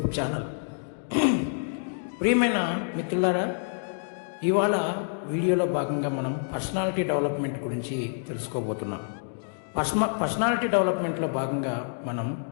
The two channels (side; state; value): right; silent; digital silence